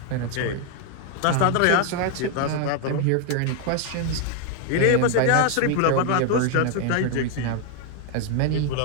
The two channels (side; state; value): both; different; correlation 0.00